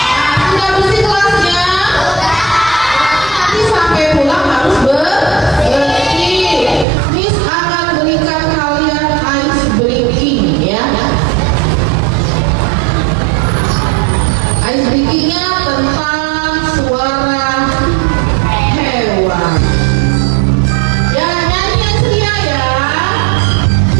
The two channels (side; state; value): left; drops out; at 6.9 s